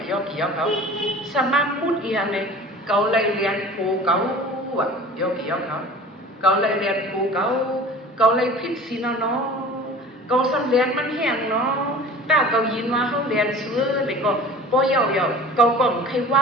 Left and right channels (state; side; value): normal; both; correlation 0.42